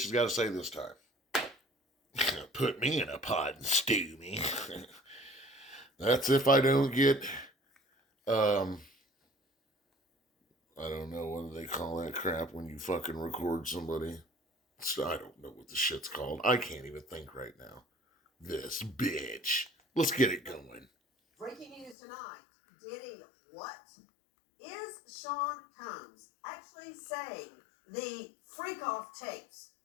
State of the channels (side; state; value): right; drops out; at 22.0 s